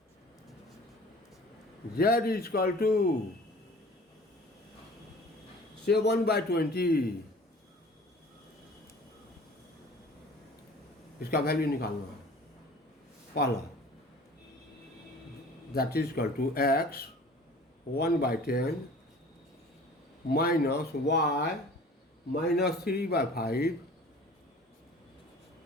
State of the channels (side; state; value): both; normal; correlation 0.46